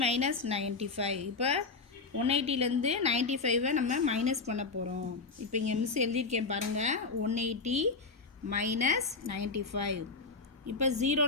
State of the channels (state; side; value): quieter; right; 4.2 dB